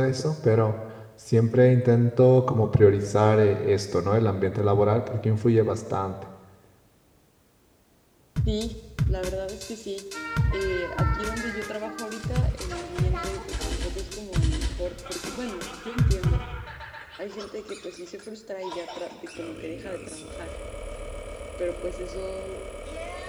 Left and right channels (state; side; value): identical; both; correlation 1.00